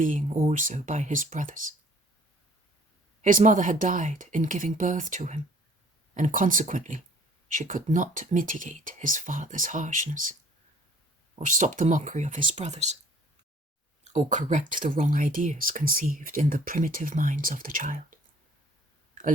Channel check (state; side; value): normal; both; correlation 0.54